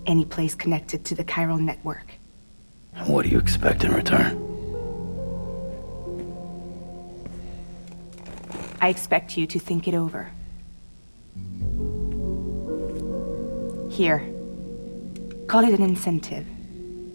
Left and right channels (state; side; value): inverted; both; correlation -1.00